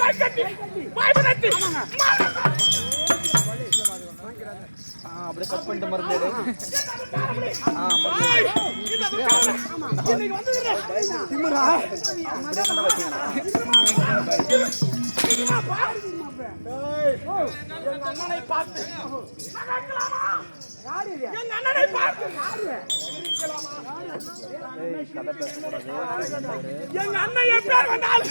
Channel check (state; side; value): inverted; both; correlation -1.00